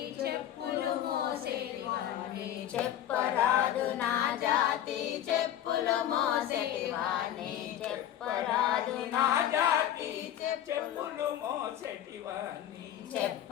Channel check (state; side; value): quieter; right; 11.2 dB